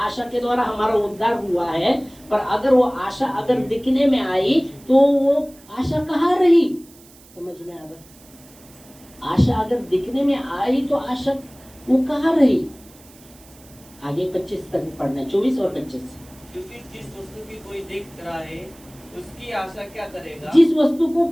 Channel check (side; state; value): right; noise; hiss, 25 dB below the sound